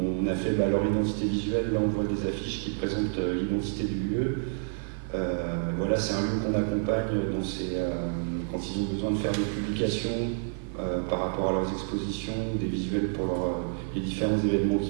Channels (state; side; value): silent; left; 59 dB below the other